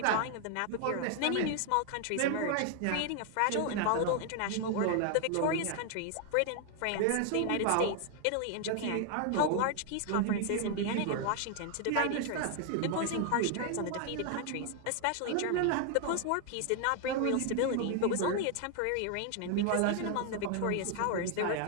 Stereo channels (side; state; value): both; different; correlation 0.00